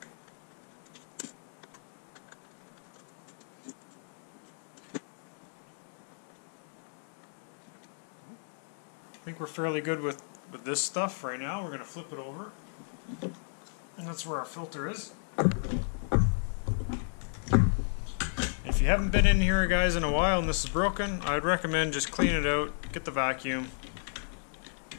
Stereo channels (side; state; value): right; silent; digital silence